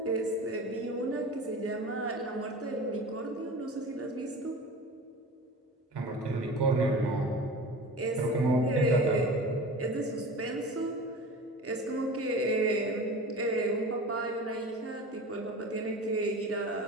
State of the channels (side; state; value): both; normal; correlation 0.35